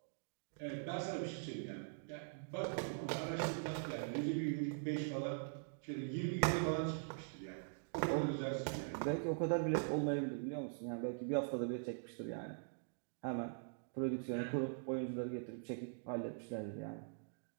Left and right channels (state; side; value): silent; left; digital silence